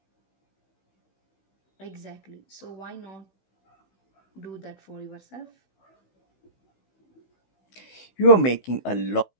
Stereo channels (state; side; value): late; right; 16 ms